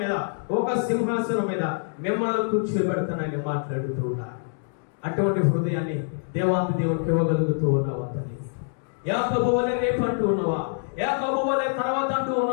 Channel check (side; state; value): right; silent; digital silence